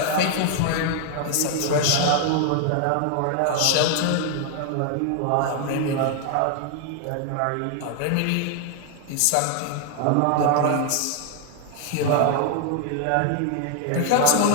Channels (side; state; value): both; different; correlation 0.00